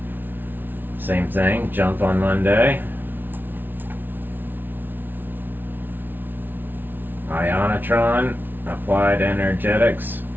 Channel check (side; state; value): left; late; 0.092 ms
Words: same thing, jump on Monday. Ionitron, Applied Energetics.